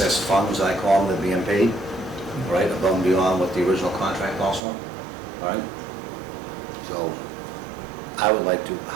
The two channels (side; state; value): left; drops out; at 4.6 s